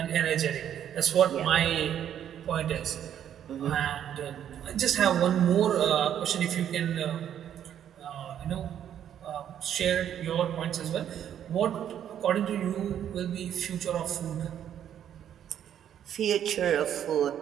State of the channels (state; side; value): quieter; left; 9.9 dB